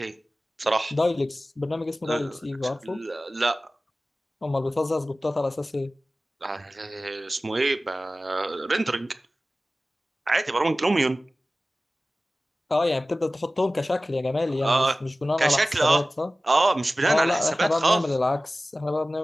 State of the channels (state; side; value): normal; both; correlation 0.96